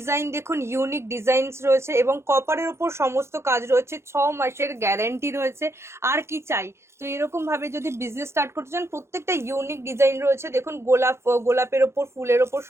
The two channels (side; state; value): left; late; 0.13 ms